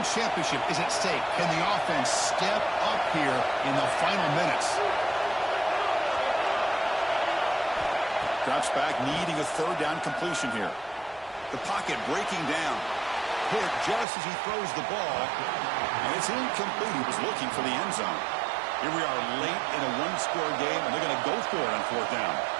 championship is at stake. Can the offense step up here in the final minutes? Drops back, needing a 3rd down completion here. The pocket breaking down. Hit just as he throws the ball. And it's incomplete. He was looking for the end zone. Here we are late in a 1-score game, and they're going to go for it on 4th down.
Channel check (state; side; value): drops out; left; at 14.1 s